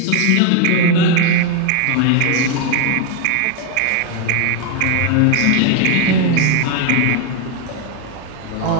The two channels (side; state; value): both; different; correlation 0.01